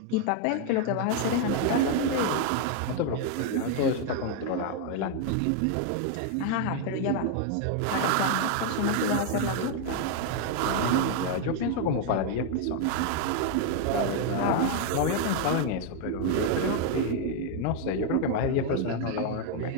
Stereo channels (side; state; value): both; different; correlation 0.00